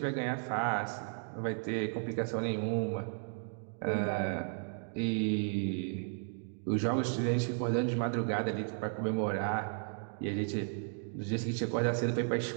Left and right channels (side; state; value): left; silent; 55 dB below the other